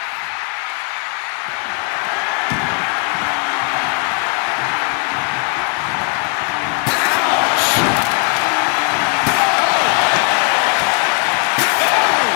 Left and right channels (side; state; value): right; quieter; 37.9 dB